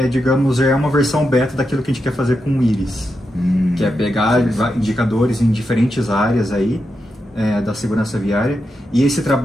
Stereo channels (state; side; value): normal; both; correlation 0.87